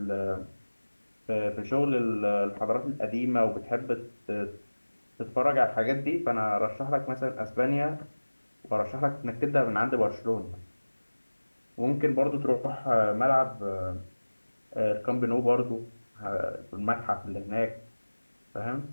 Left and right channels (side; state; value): both; inverted; correlation -1.00